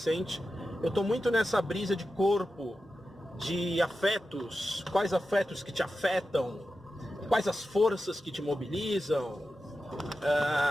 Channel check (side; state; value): both; normal; correlation 0.92